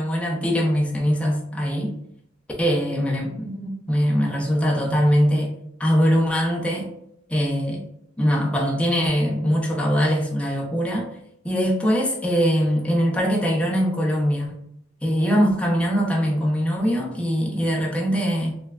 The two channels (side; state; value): both; normal; correlation 0.85